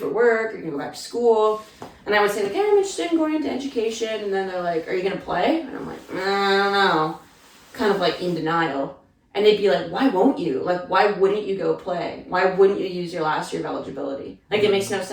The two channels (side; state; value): both; identical; correlation 1.00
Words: work? Are you gonna go back to school? And I would say like, yeah, I'm interested in going into education. And then they're like, are you gonna play? And I'm like, I don't know, kind of like in denial. And they'd be like, why won't you? Like, why wouldn't you go play? Why wouldn't you use your last year of eligibility? Like, it makes no